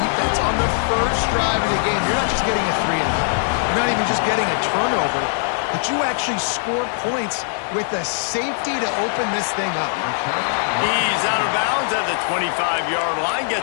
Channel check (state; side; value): silent; right; digital silence